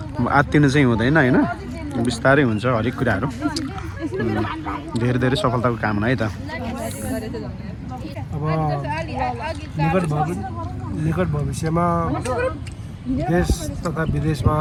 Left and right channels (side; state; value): both; identical; correlation 1.00